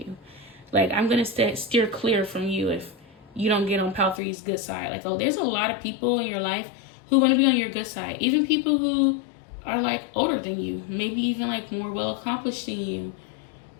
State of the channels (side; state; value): right; drops out; at 4.2 s